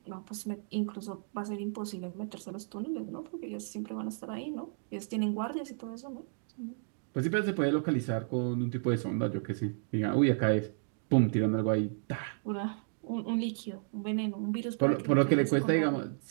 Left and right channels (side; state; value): left; silent; digital silence